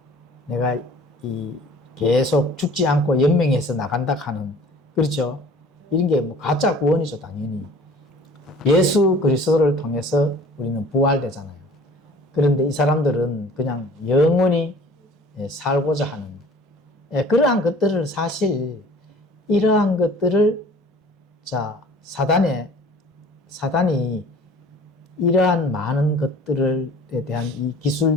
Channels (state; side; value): normal; both; correlation 0.48